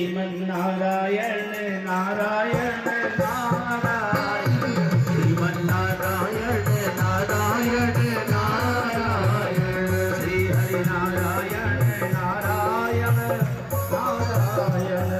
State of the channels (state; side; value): identical; both; correlation 1.00